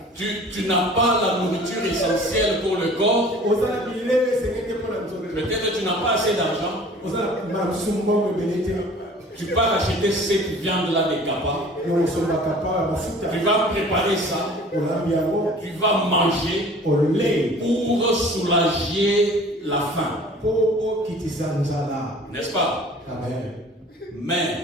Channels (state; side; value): normal; both; correlation 0.47